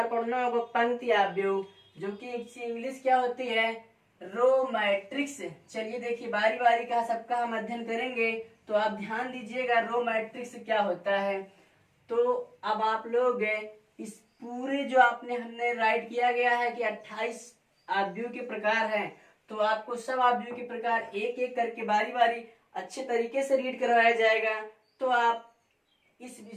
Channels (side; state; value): both; identical; correlation 1.00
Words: पढ़ना होगा पंक्ति आव्यूह, जो कि इंग्लिश क्या होती है, रो मैट्रिक्स। चलिए देखिए, बारी बारी का सबका हम अध्ययन करेंगे, तो आप ध्यान दीजिएगा रो मैट्रिक्स क्या होता है। तो अब आप लोग इस पूरे जो हमने राइट किया गया है कि 28 आव्यूह के प्रकार हैं, तो आपको सब आव्यूह के प्रकार एक एक करके बारी बारी अच्छे तरीके से रीड करवाया जाएगा। तो आप